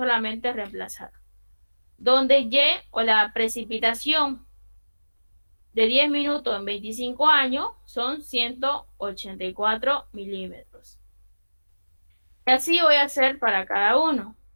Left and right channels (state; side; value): inverted; both; correlation -1.00